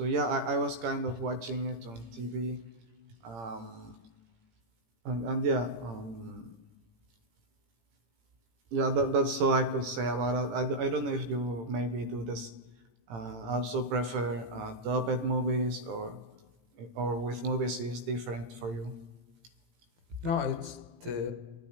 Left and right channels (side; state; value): left; late; 18 ms